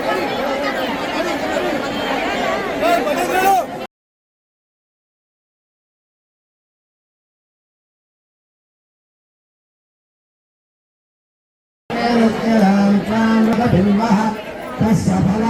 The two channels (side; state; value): both; identical; correlation 1.00